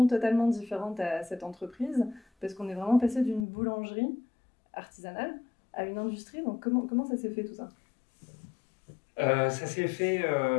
totalement différente à cette entreprise, parce qu'on est vraiment passé d'une boulangerie artisanale à une industrie. Donc comment ça s'est fait tout ça? Ça s'est fait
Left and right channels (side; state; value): right; drops out; at 3.5 s